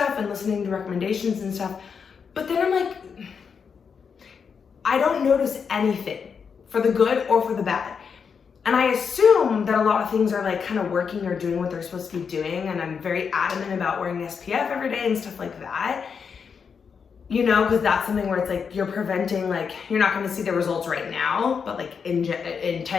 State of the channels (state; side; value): quieter; right; 6.3 dB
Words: and listening to recommendations and stuff. But then I'm like, I don't notice anything for the good or for the bad. And I assume that a lot of things are like kind of working or doing what they're supposed to be doing. And I'm very adamant about wearing SPF every day and stuff like that. You know, because that's something where it's like you're preventing, like you're not going to see the results right now, but like in